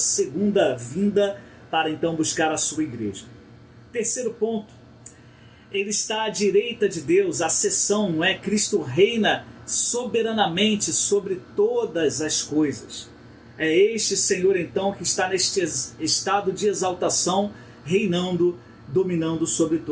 vinda, para então buscar a sua igreja. Terceiro ponto, ele está à direita de Deus, a seção, não é? Cristo reina soberanamente sobre todas as coisas. É este Senhor então que está neste estado de exaltação, reinando, dominando sobre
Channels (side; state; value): both; identical; correlation 1.00